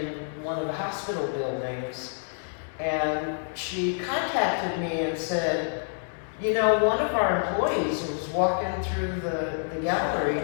one of the hospital buildings. And she contacted me and said, you know, one of our employees was walking through the gallery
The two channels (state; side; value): silent; right; 58 dB below the other